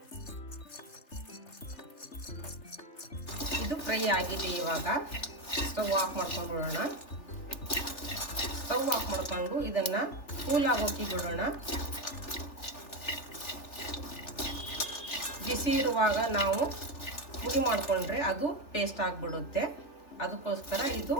ಇದು ಫ್ರೈ ಆಗಿದೆ. ಇವಾಗ ಸ್ಟವ್ ಆಫ್ ಮಾಡ್ಕೊಂಡು ಬಿಡೋಣ. ಸ್ಟವ್ ಆಫ್ ಮಾಡ್ಕೊಂಡು ಇದನ್ನು ಕೂಲ್ ಆಗೋಕೆ ಬಿಡೋಣ. ಬಿಸಿ ಇರುವಾಗ ನಾವು ಪುಡಿ ಮಾಡಿಕೊಂಡ್ರೆ ಅದು ಪೇಸ್ಟ್ ಆಗಿಬಿಡುತ್ತೆ. ಅದಕ್ಕೋಸ್ಕರ ಇದು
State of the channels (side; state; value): right; late; 3.4 ms